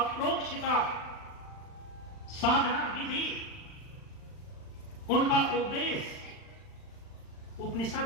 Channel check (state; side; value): late; right; 40 ms